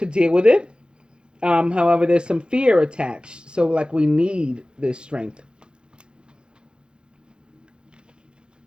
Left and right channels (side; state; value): left; late; 0.051 ms